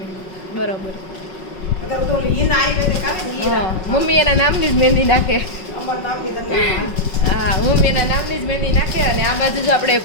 બરોબર. અગર તો ઈન આવી ને કાવે ને ઈ. મમ્મી એના નામની જ મહેંદી નાખે. અમાર નામની તમને. હા, મમ્મી એના નામની જ મહેંદી નાખે. અને આ બાજુ જો આપણે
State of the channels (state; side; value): late; right; 5.4 ms